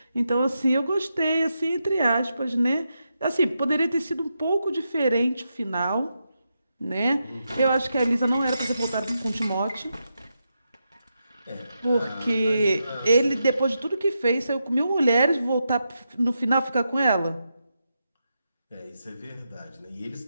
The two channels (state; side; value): inverted; both; correlation -0.85